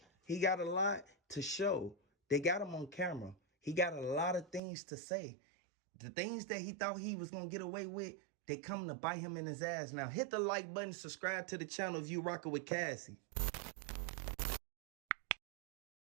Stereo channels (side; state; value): left; drops out; at 4.6 s